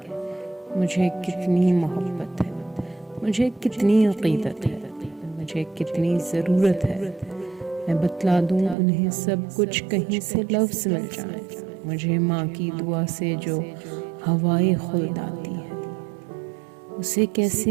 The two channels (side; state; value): left; drops out; at 8.8 s